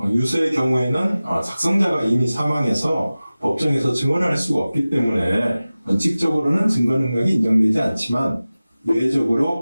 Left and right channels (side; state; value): both; inverted; correlation -0.97